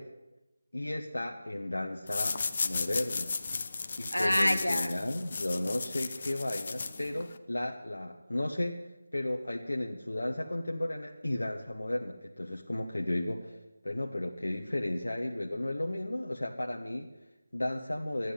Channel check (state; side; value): inverted; both; correlation -0.98